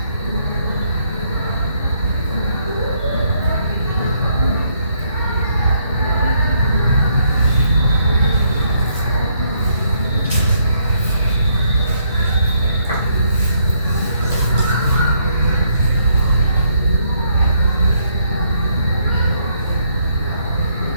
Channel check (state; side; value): inverted; both; correlation -0.72